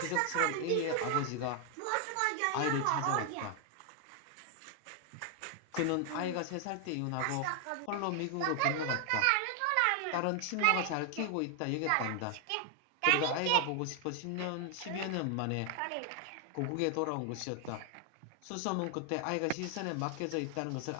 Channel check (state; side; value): different; both; correlation 0.00